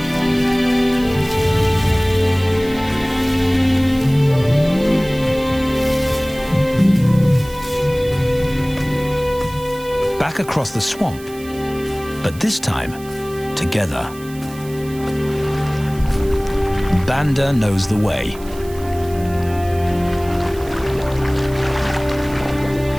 Back across the swamp, but this time, together. Banda knows the way.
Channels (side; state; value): right; noise; hiss, 20 dB below the sound